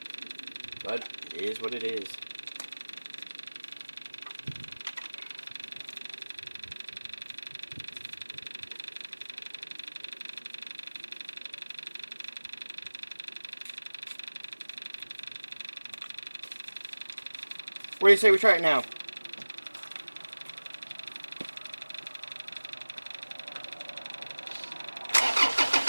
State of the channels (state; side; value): inverted; both; correlation -1.00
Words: But it is what it is. What do you say we try it now?